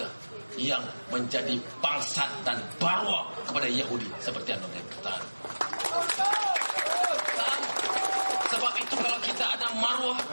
yang menjadi bangsat dan barwa kepada Yahudi seperti Anwar Ibrahim. Sebab itu kalau kita ada marwah,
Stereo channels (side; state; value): both; inverted; correlation -1.00